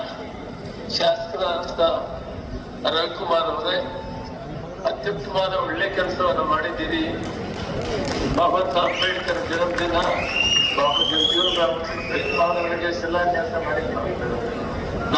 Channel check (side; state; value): both; identical; correlation 1.00